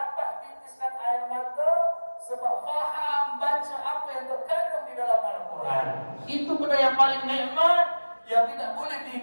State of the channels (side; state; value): both; inverted; correlation -1.00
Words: titiskan air mata sebab faham baca apa yang terkandung di dalam Al-Quran. Itu benda yang paling nikmat yang tidak boleh